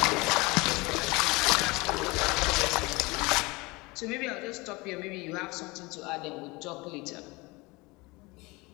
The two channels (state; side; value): quieter; right; 24.3 dB